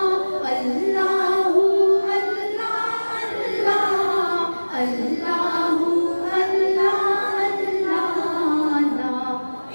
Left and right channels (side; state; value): both; inverted; correlation -1.00